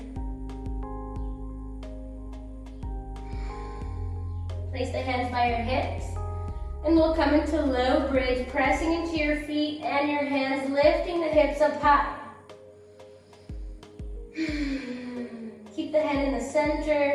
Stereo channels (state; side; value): identical; both; correlation 1.00